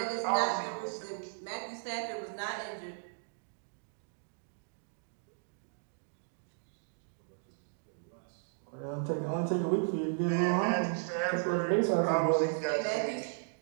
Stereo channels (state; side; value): silent; left; digital silence